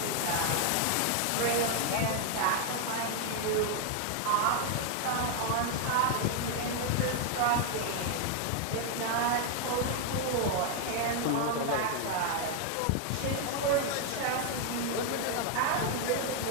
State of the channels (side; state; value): both; different; correlation 0.01